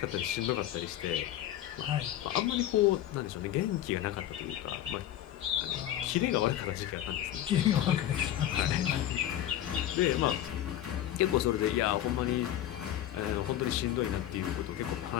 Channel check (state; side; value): quieter; right; 12.2 dB